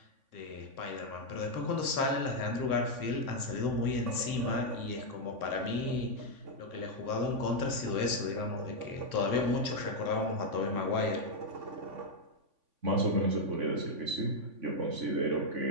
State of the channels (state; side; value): late; left; 3.5 ms